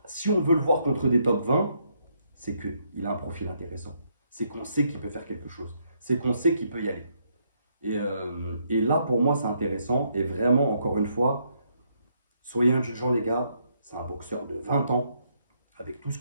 si on veut le voir contre des top 20, c'est qu'il a un profil intéressant. C'est qu'on sait qu'il peut faire quelque chose. C'est qu'on sait qu'il peut y aller. Et là, pour moi, c'est intéressant. Et vraiment, encore une fois, soyez indulgents, les gars. C'est un boxeur de 20 ans, avec tout ce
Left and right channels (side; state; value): both; inverted; correlation -0.74